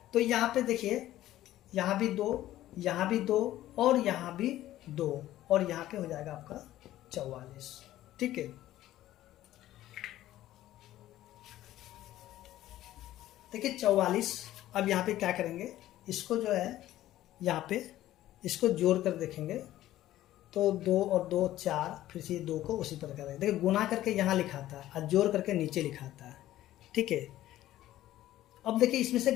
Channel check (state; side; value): quieter; right; 14.1 dB